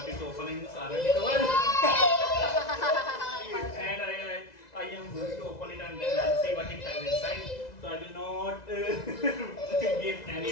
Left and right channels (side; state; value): right; late; 2.0 ms